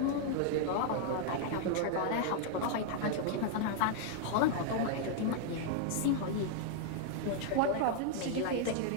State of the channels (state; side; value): different; both; correlation 0.00